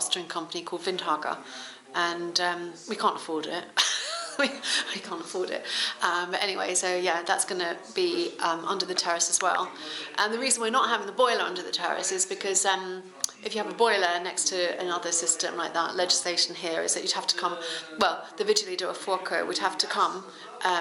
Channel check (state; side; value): identical; both; correlation 1.00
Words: company called Windhager, and we can't afford it. we can't afford it. But anyway, so yeah, that's going to be under the terrace as well. And the reason we're not having the boiler under the terrace is because if you have a boiler next to another system like that, legislation here is that you'd have to come, well, the Vigili del Fuoco would have to come